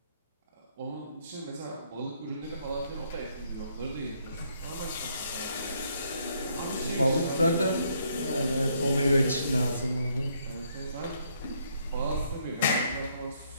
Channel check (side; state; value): both; inverted; correlation -0.71